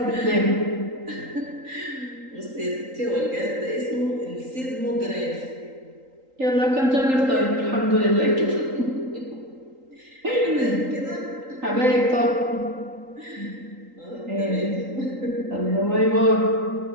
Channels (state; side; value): late; left; 3.8 ms